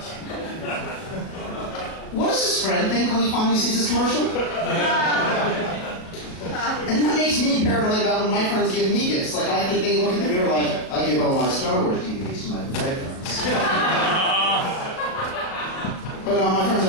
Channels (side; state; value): right; late; 37 ms